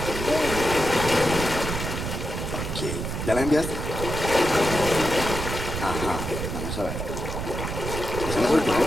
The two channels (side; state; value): right; noise; rumble, 5 dB below the sound